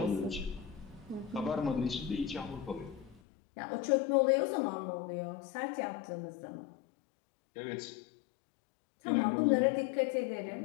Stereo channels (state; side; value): drops out; right; at 3.2 s